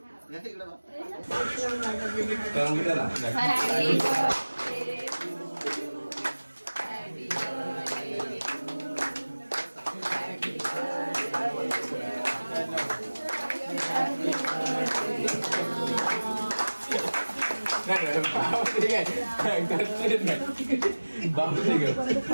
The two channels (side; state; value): both; inverted; correlation -1.00